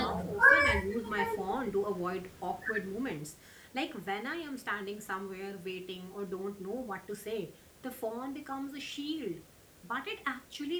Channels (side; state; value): both; identical; correlation 1.00